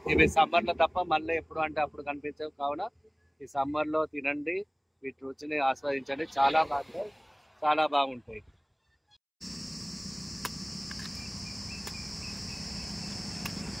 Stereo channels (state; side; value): identical; both; correlation 1.00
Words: ఇవి సమ్మర్లో తప్ప మళ్ళీ ఎప్పుడు అంటే అప్పుడు కనిపించవు. కావున ఈ సమ్మర్లో తినండి, వీటి రుచిని ఆస్వాదించండి. చాలా బాగుంటాయి, చాలా బాగుంటాయి.